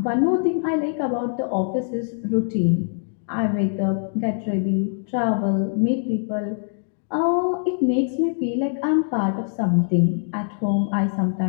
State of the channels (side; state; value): right; silent; digital silence